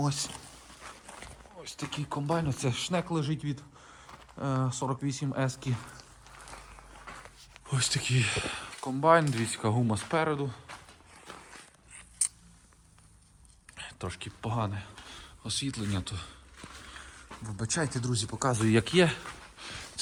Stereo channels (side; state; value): both; identical; correlation 1.00